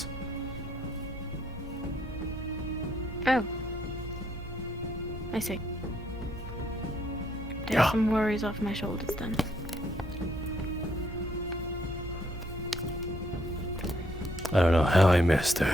Oh. I see. Take Yeah. some worries off my shoulders then. I don't know how I missed her.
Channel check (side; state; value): both; normal; correlation 0.71